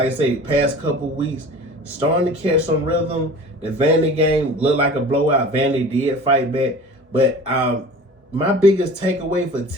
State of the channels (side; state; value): both; normal; correlation 0.41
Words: I say, past couple weeks, starting to catch some rhythm. The Vandy game looked like a blowout. Vandy did fight back, but my biggest takeaway for